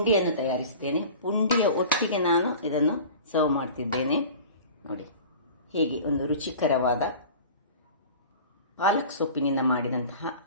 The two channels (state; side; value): inverted; both; correlation -0.40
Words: ತಯಾರಿಸಿದ್ದೇನೆ. ಪುಂಡಿಯ ಒಟ್ಟಿಗೆ ನಾನು ಇದನ್ನು ಸರ್ವ್ ಮಾಡ್ತಿದ್ದೇನೆ. ನೋಡಿ ಹೇಗೆ ಒಂದು ರುಚಿಕರವಾದ ಪಾಲಕ್ ಸೊಪ್ಪಿನಿಂದ ಮಾಡಿದಂತಹ